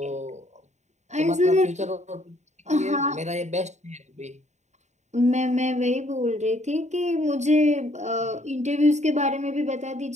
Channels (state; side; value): late; left; 0.34 ms